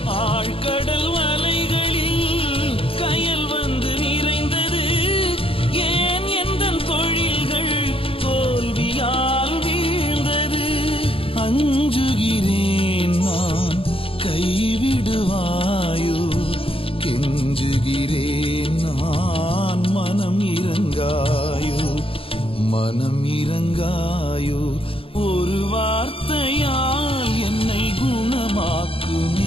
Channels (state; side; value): late; right; 0.27 ms